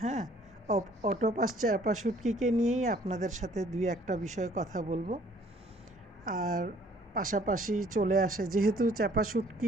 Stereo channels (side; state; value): both; normal; correlation 0.58